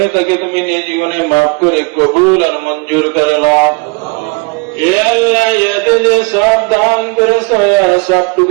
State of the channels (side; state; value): left; quieter; 30.8 dB